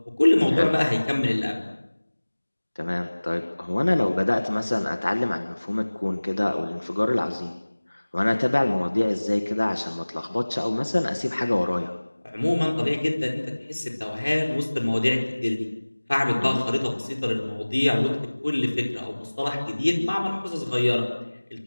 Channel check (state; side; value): inverted; both; correlation -1.00